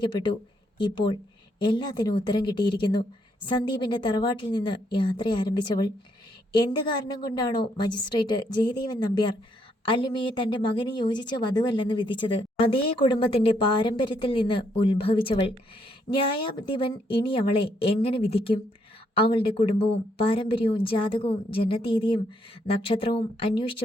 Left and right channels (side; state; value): both; normal; correlation 0.74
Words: ഇപ്പോൾ എല്ലാത്തിനും ഉത്തരം കിട്ടിയിരിക്കുന്നു. സന്ദീപിൻ്റെ തറവാട്ടിൽ നിന്ന് യാത്ര ആരംഭിച്ചവൾ എന്ത് കാരണം കൊണ്ടാണോ മജിസ്ട്രേറ്റ് ജയദേവൻ നമ്പ്യാർ അല്ലിമയെ തൻ്റെ മകന് യോജിച്ച വധുവല്ലെന്ന് വിധിച്ചത്, അതേ കുടുംബത്തിൻ്റെ പാരമ്പര്യത്തിൽ നിന്ന് ഉത്ഭവിച്ചവൾ. ന്യായാധിപൻ ഇനി അവളെ എങ്ങനെ വിധിക്കും? അവളുടെ കുടുംബവും പാരമ്പര്യവും ജാതകവും ജനതീയതിയും നക്ഷത്രവും